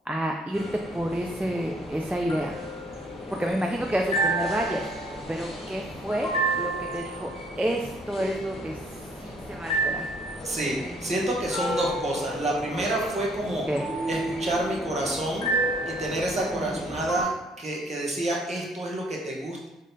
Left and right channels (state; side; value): normal; both; correlation 0.63